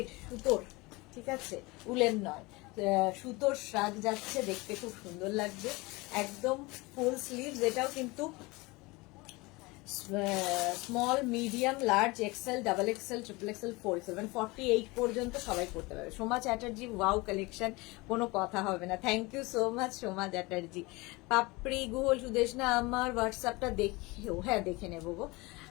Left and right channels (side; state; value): right; quieter; 23.8 dB